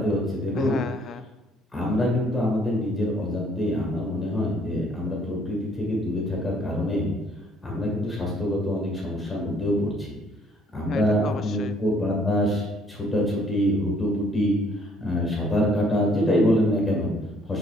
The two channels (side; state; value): both; normal; correlation 0.63